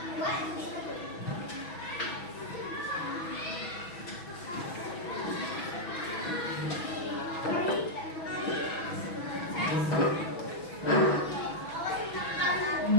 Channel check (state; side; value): late; right; 6.1 ms